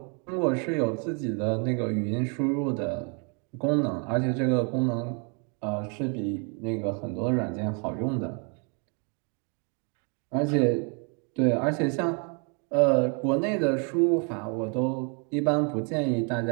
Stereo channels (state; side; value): quieter; left; 36.3 dB